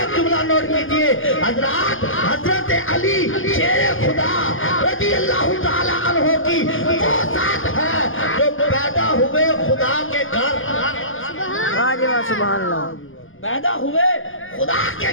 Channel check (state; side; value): late; right; 0.58 ms